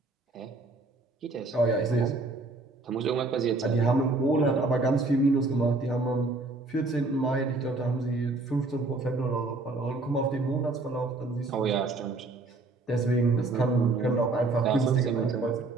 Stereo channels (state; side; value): quieter; left; 3.3 dB